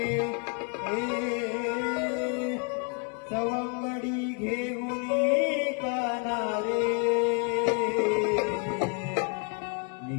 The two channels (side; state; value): right; quieter; 36.3 dB